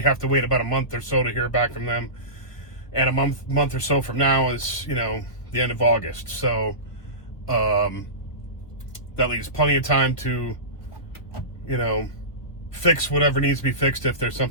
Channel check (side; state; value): right; late; 1.8 ms